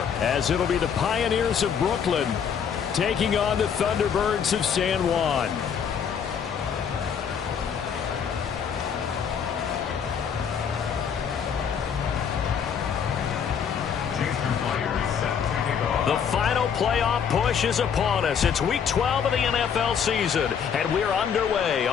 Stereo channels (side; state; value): right; quieter; 7.4 dB